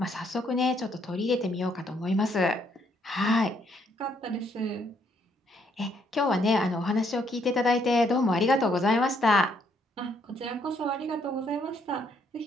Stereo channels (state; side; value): normal; both; correlation 0.70